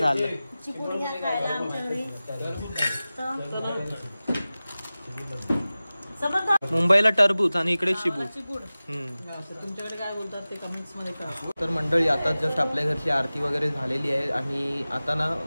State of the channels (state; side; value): inverted; both; correlation -0.97